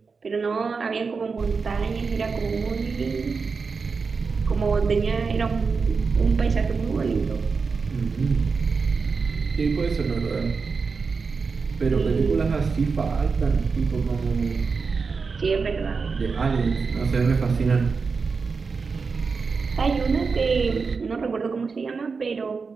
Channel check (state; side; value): quieter; left; 4.9 dB